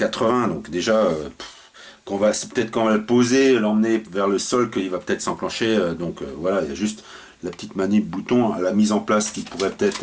donc déjà, c'est peut-être quand on va le poser, l'emmener vers le sol, qu'il va peut-être s'enclencher. Voilà, il y a juste la petite manip bouton à la mise en place qui pourrait peut-être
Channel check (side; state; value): both; identical; correlation 1.00